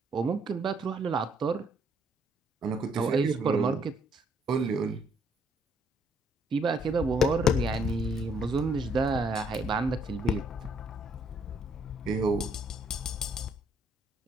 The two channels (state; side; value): normal; both; correlation 0.67